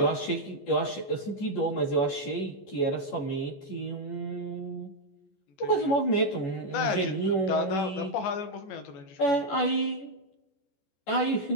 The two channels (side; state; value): right; late; 14 ms